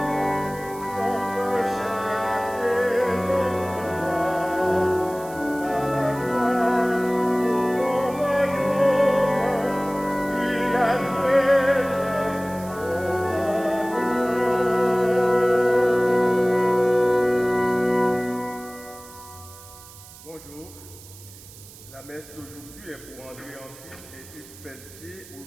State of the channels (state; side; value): noise; right; hiss, 19 dB below the sound